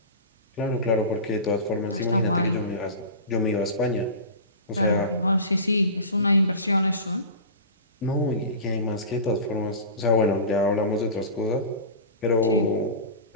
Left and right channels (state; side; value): inverted; both; correlation -0.31